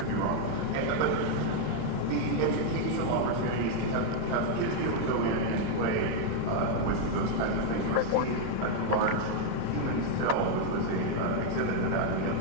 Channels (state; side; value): different; both; correlation 0.00